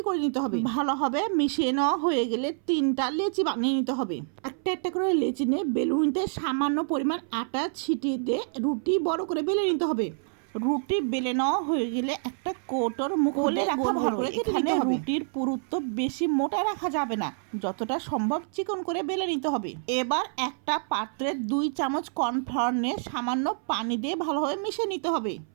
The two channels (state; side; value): silent; left; 60 dB below the other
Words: করে নিতে হবে। ভালোভাবে মিশিয়ে নেওয়া হয়ে গেলে 3টা লেচি বানিয়ে নিতে হবে। একটা একটা করে লেচি নিয়ে বেলুনিতে সামান্য পরিমাণ আটা ছিটিয়ে দিয়ে রুটি বড় করে বেলে নিতে হবে। রুটি বেলে নেওয়া হয়ে গেলে একটা কৌটোর মুখে রাখা ভালো করে এখানে রুটির পুরুত্ব বেশি মোটা রাখা যাবে না, যতটা সম্ভব চিকন করে বেলে নিতে হবে। এবার একটা পাত্রে 2 চামচ কর্নফ্লাওয়ার নিয়ে সামান্য পানি দিয়ে ভালোভাবে মিশিয়ে নিতে হবে।